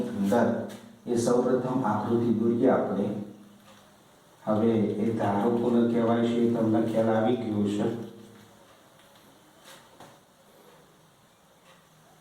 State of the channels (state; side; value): identical; both; correlation 1.00